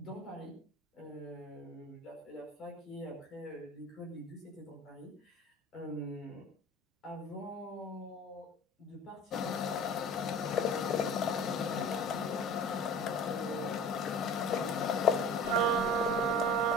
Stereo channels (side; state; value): both; normal; correlation 0.40